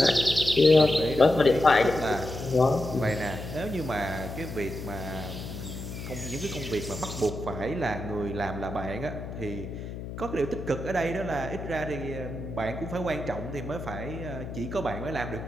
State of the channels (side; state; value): left; noise; hum, 9 dB below the sound